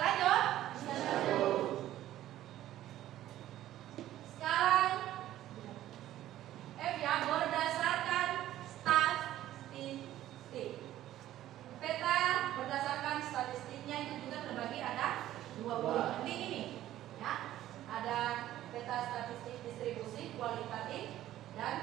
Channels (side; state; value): left; quieter; 13.4 dB